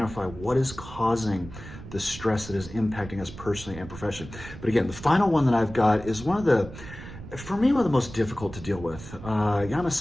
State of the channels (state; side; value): noise; right; rumble, 13 dB below the sound